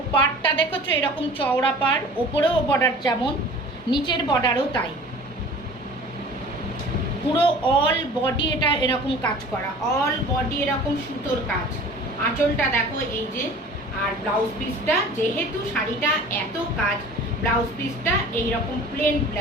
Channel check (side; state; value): both; normal; correlation 0.43